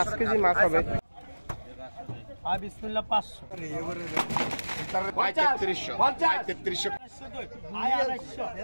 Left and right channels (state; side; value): inverted; both; correlation -1.00